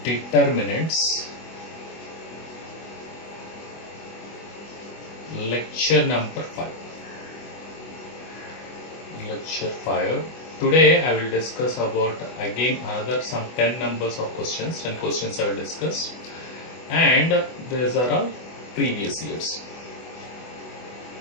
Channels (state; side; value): late; right; 24 ms